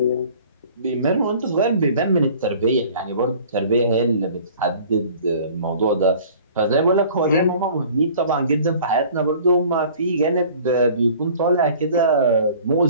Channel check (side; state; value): both; inverted; correlation -0.49